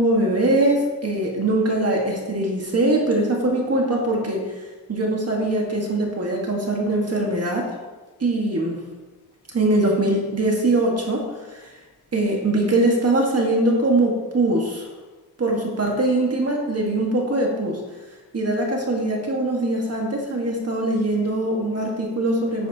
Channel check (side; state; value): both; normal; correlation 0.24